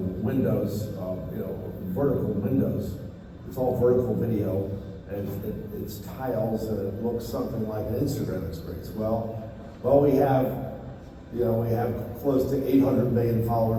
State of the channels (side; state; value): both; identical; correlation 1.00